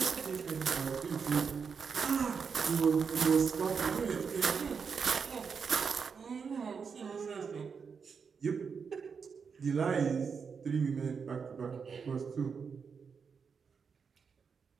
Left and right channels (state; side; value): quieter; left; 5.9 dB